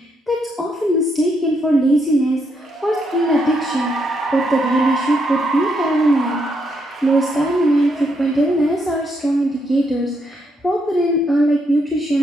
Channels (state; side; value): normal; both; correlation 0.77